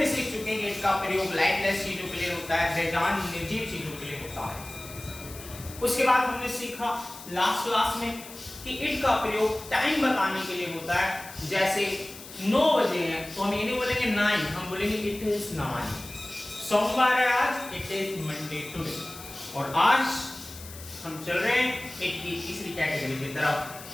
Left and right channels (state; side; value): noise; left; hiss, 15 dB below the sound